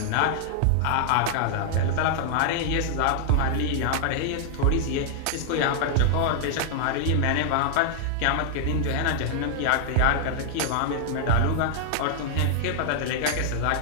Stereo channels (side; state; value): both; different; correlation -0.01